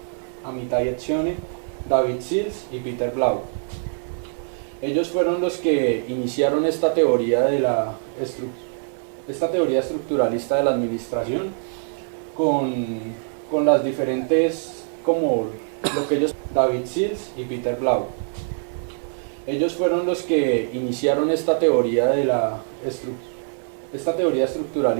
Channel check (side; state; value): left; silent; digital silence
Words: Amitai Etzioni, David Sills y Peter Blau. Ellos fueron los que iniciaron esta teoría estructuralista de la administración con las diferentes, como lo que ellos, David Sills y Peter Blau. Ellos fueron los que iniciaron esta teoría